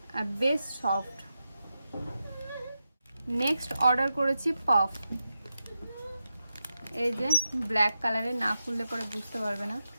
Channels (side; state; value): both; inverted; correlation -0.90